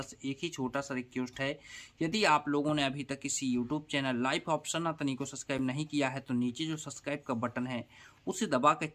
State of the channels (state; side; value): identical; both; correlation 1.00